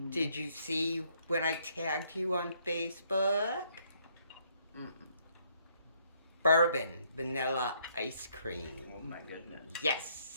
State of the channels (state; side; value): inverted; both; correlation -0.69